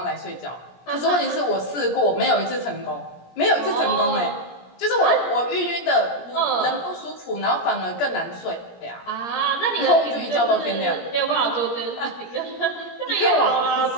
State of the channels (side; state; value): right; late; 17 ms